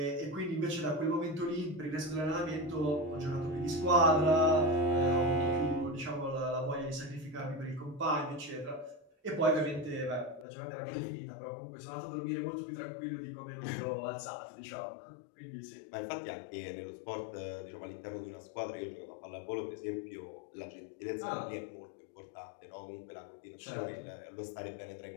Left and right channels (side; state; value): right; drops out; at 10.5 s